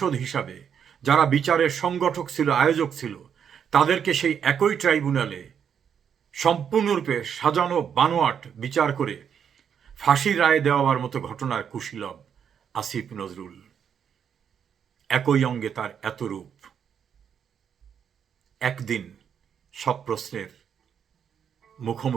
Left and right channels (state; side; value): quieter; left; 7.9 dB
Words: হিসাবে যারা বিচারের সংগঠক ছিল, আয়োজক ছিল, তাদেরকে সেই একই ট্রাইব্যুনালে সম্পূর্ণরূপে সাজানো বানোয়াট বিচার করে ফাঁসির রায় দেওয়ার মতো ঘটনার কুশীলব আসিফ নজরুল। একই অঙ্গে তার এত রূপ। একদিন সব প্রশ্নের